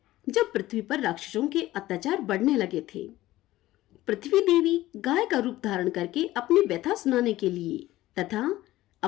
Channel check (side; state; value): right; quieter; 16.2 dB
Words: जब पृथ्वी पर राक्षसों के अत्याचार बढ़ने लगे थे। पृथ्वी देवी गाय का रूप धारण करके अपनी व्यथा सुनाने के लिए तथा